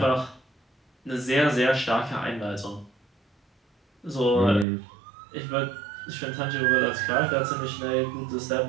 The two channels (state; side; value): drops out; left; at 4.7 s